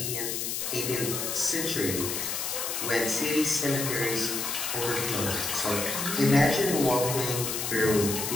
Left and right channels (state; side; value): noise; left; hiss, 2 dB below the sound